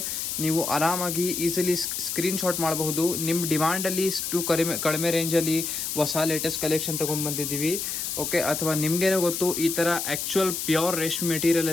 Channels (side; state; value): left; noise; hiss, 3 dB below the sound